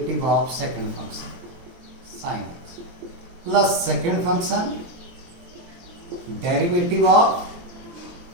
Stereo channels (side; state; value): left; late; 23 ms